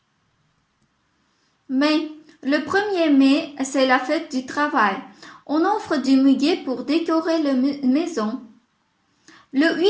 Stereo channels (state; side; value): identical; both; correlation 1.00